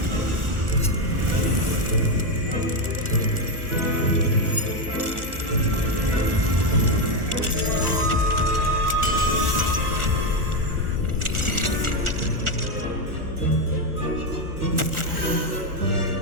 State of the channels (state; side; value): late; left; 1.4 ms